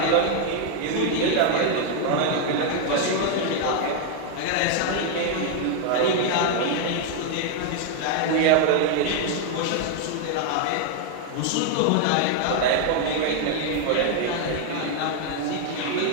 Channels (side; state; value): both; different; correlation 0.00